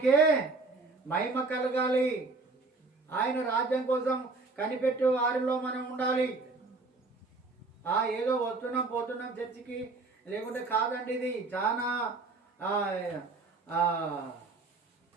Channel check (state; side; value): quieter; left; 3.6 dB